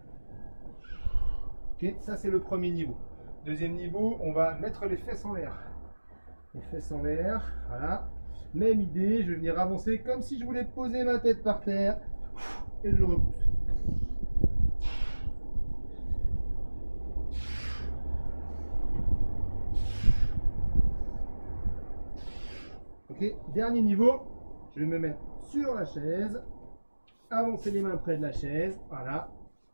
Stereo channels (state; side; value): inverted; both; correlation -1.00